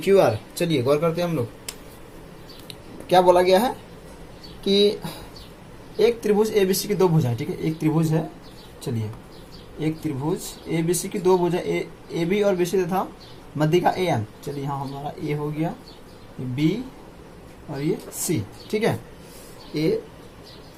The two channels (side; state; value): both; identical; correlation 1.00